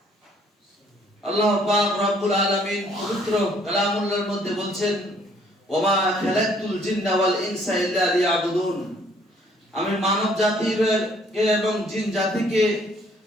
আল্লাহ পাক রব্বুল আলামিন পবিত্র কালামুল্লাহর মধ্যে বলছেন, ওমা খালাকতুল জিন্না ওয়াল ইনসা ইল্লা লিয়াবুদুন। আমি মানব জাতিকে এবং জিন জাতিকে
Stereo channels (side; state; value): both; normal; correlation 0.63